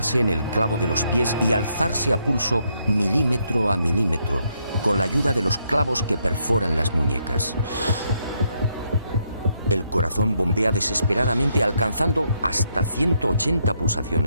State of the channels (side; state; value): both; inverted; correlation -0.76